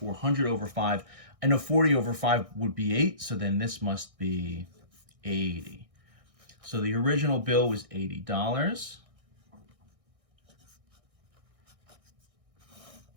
over 5. I know 40 over 5 would be 8, so then this must be 80. So the original bill was $80.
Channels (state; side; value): late; left; 1.6 ms